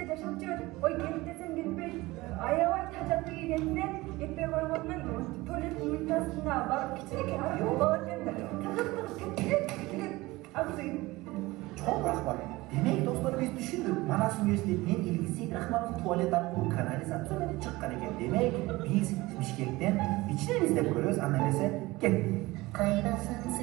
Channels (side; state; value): left; quieter; 20.4 dB